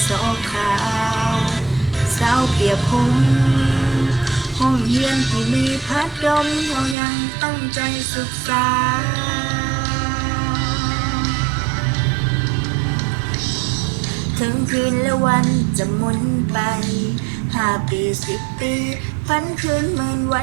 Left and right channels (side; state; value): left; drops out; at 7.0 s